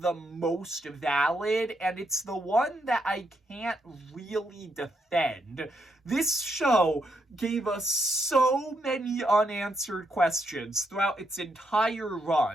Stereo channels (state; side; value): normal; both; correlation 0.78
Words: most valid, and it's the one that I can't really defend. This show gave us so many unanswered questions throughout its entire